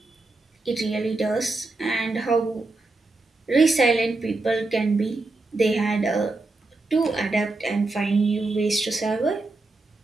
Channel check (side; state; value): left; quieter; 3.3 dB